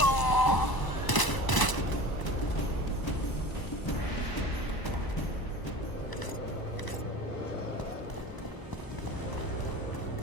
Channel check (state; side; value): late; right; 1.0 ms